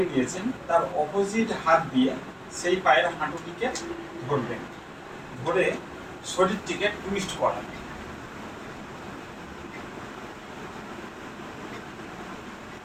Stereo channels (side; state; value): both; identical; correlation 1.00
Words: নিয়েছেন তার অপোজিট হাত দিয়ে সেই পায়ের হাঁটুটিকে ধরবেন। ধরে শরীরটিকে টুইস্ট করাবেন।